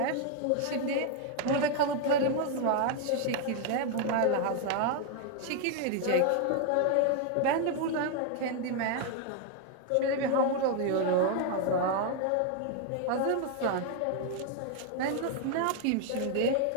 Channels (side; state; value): both; different; correlation 0.00